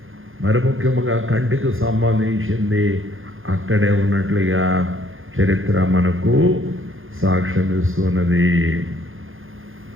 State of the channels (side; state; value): left; late; 0.59 ms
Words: మరి ముఖ్యంగా కంటికి సంబంధించింది అక్కడే ఉన్నట్లుగా చరిత్ర మనకు సాక్ష్యం ఇస్తున్నది.